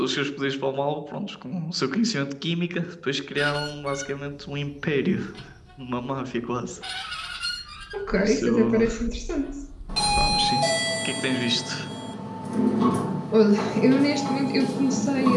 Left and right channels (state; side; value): identical; both; correlation 1.00